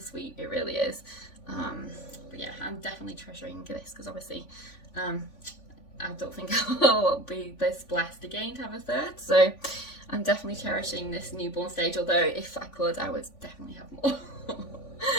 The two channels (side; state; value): right; late; 3.5 ms